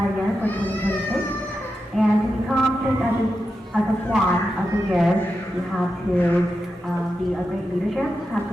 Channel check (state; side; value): normal; both; correlation 0.89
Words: year for 2026. And to become picked as a swan of the year, you have to be a great leadership, have